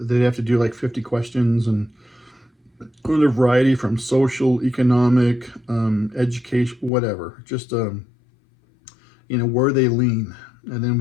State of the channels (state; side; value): drops out; right; at 6.9 s